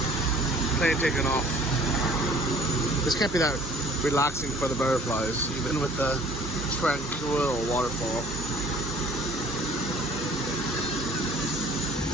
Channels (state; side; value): normal; both; correlation 0.52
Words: Plane taking off. This can't be that relaxing for the butterflies, even with the tranquil waterfall.